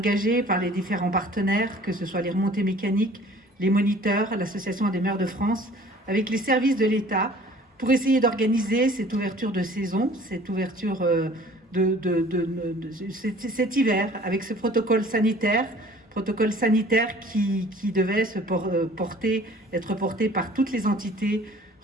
par les différents partenaires, que ce soit les remontées mécaniques, les moniteurs, l'Association des maires de France, avec les services de l'État, pour essayer d'organiser cette ouverture de saison, cette ouverture cet hiver, avec ce protocole sanitaire qui devait être porté par toutes les entités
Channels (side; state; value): both; normal; correlation 0.50